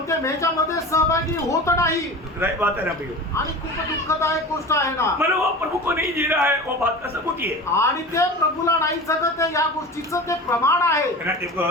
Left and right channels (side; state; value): both; normal; correlation 0.33